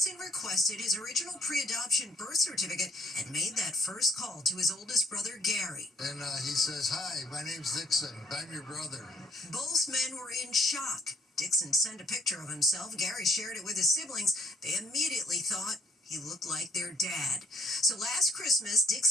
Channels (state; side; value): normal; both; correlation 0.67